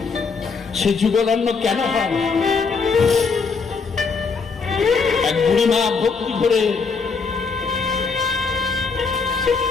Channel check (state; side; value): quieter; right; 4.9 dB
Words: সে যুগলন্ন কেন হয়? এক বুড়ি মা ভক্তি করে,